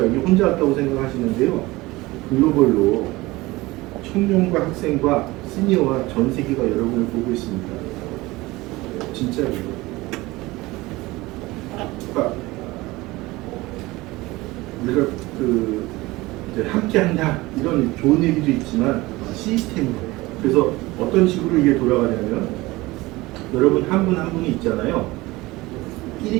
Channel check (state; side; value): quieter; left; 20.4 dB